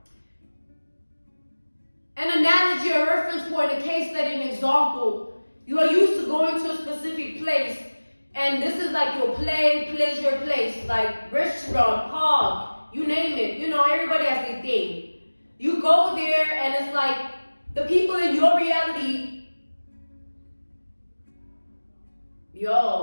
an analogy, a reference point, a case study, an example. You are used to going to a specific place, and this is like your pleasure place, like restaurant, park, you name it. You know, everybody has their thing. You go there, and it's like the people in your reality,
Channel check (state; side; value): inverted; both; correlation -1.00